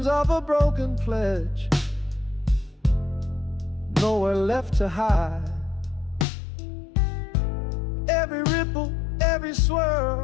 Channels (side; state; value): right; drops out; at 6.2 s